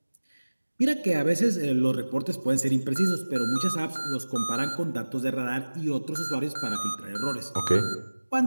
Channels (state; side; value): inverted; both; correlation -1.00